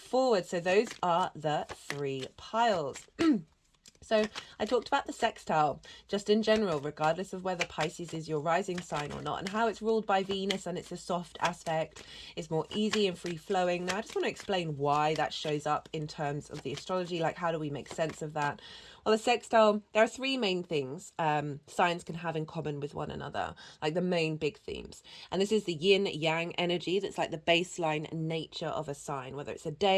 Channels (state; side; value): identical; both; correlation 1.00